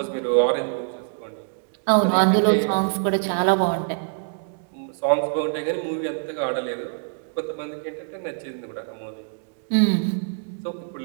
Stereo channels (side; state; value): left; silent; digital silence